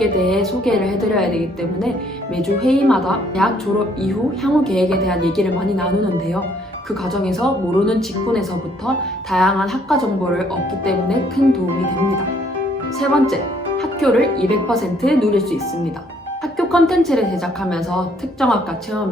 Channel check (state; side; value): normal; both; correlation 0.65